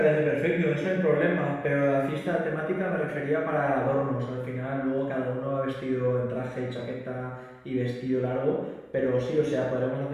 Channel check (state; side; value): identical; both; correlation 1.00